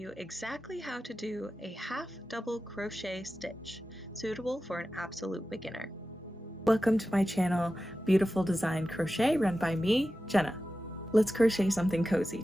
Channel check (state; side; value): normal; both; correlation 0.93